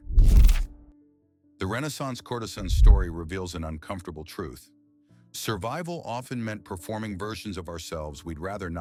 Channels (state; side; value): identical; both; correlation 1.00